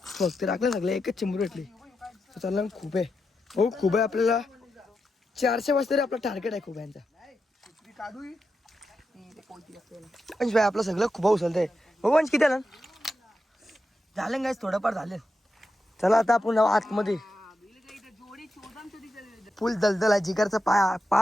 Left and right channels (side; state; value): both; normal; correlation 0.87